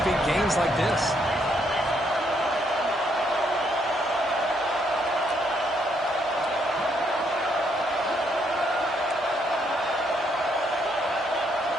big gains like this.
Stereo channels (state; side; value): normal; both; correlation 0.73